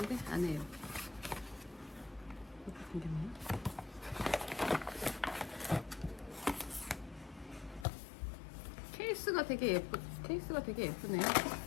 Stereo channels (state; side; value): drops out; right; at 7.9 s